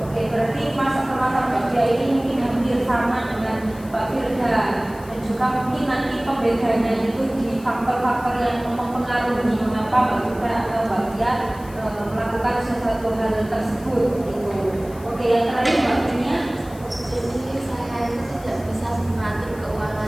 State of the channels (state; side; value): noise; left; hiss, 22 dB below the sound